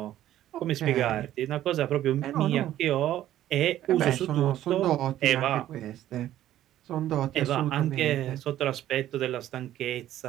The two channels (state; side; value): quieter; left; 12.9 dB